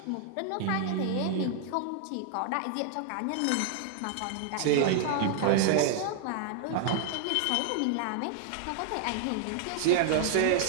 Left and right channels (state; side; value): different; both; correlation -0.01